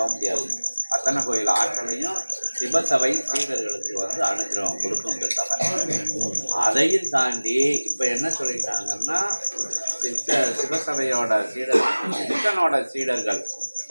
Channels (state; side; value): inverted; both; correlation -1.00